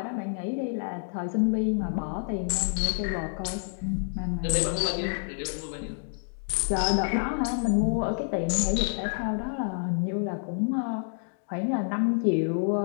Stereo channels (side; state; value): right; silent; digital silence